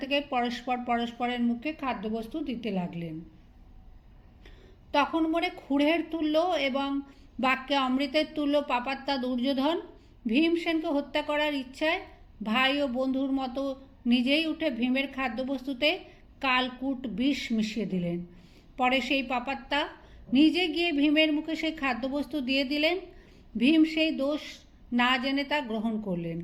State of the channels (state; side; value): identical; both; correlation 1.00